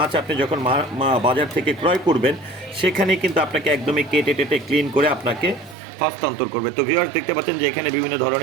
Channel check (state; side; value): drops out; left; at 5.8 s